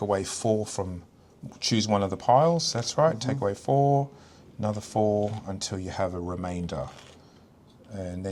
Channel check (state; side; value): identical; both; correlation 1.00